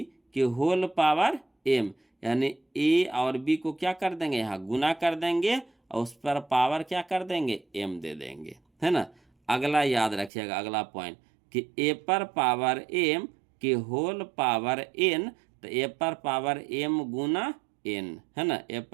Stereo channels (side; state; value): left; drops out; at 10.3 s